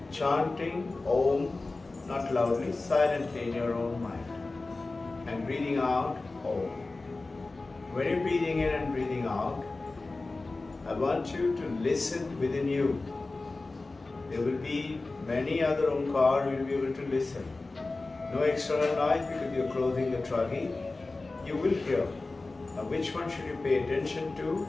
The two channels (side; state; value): right; quieter; 3.4 dB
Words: chanting Om, not loudly, silently in your own mind, and breathing out Om. When you're breathing in and breathing out, I want you to listen within you. There will be many other Omkar, you'll be able to listen. No external noise because you're closing the tragi. You will hear. Now which one should you pay attention to?